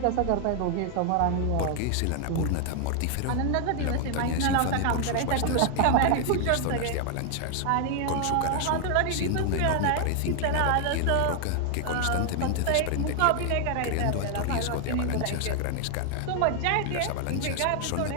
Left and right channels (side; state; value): both; different; correlation 0.00